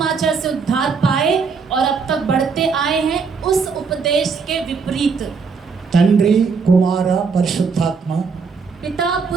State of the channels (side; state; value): left; quieter; 5.2 dB